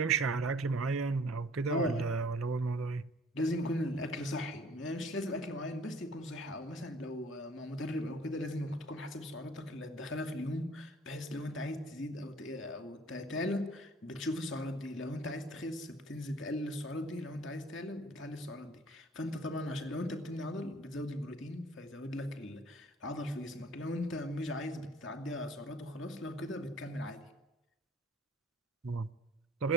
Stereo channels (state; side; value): normal; both; correlation 0.53